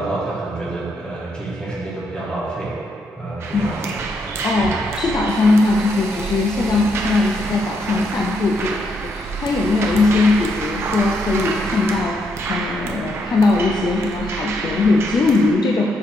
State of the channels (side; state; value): both; normal; correlation 0.77